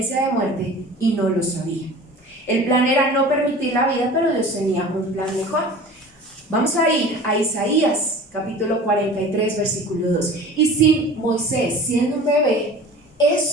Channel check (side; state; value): both; normal; correlation 0.41